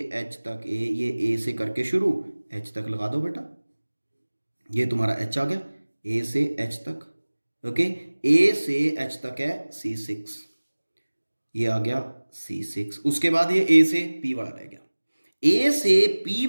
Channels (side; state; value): both; inverted; correlation -1.00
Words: एच तक ये ए से करके शुरू, एच तक लगा दो बेटा, ये तुम्हारा एच आ गया, ए से एच तक। ओके, ए से एच तक है C6, ये आ गया C6। उसके बाद ये ए से पी वाला रह गया, ए से पी